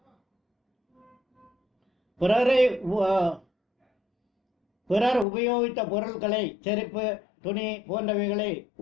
பிறர் உபயோகித்த பொருட்களை, செருப்பு, துணி போன்றவைகளை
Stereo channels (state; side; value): drops out; right; at 5.2 s